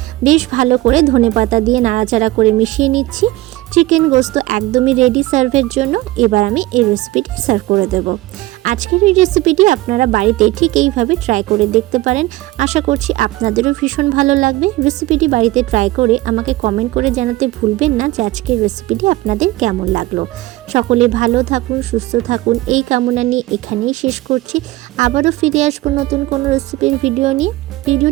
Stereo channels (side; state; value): left; quieter; 18.1 dB